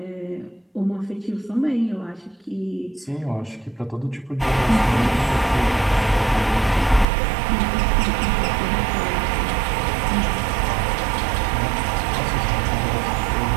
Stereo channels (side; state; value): left; drops out; at 7.1 s